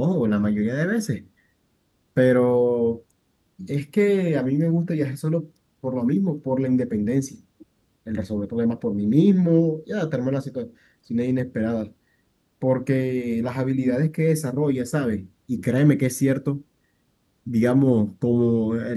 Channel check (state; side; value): identical; both; correlation 1.00